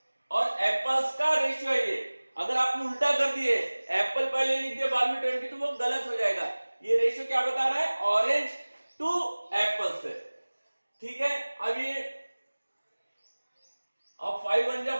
और एप्पल्स का रेशियो है ये। अगर आपने उल्टा कर दिए, एप्पल पहले लिख दिया बाद में 20, तो वो गलत हो जाएगा। ये रेशियो क्या बता रहा है, ऑरेंज टू एप्पल से। ठीक है, अब ये अब 5 1 जा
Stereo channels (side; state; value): both; inverted; correlation -1.00